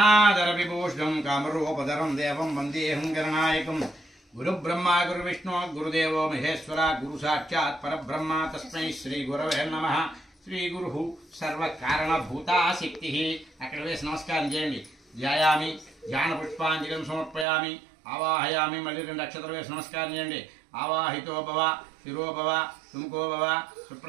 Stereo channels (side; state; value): left; drops out; at 17.4 s